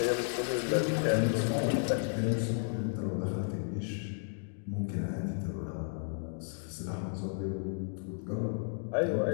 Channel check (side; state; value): right; silent; 56 dB below the other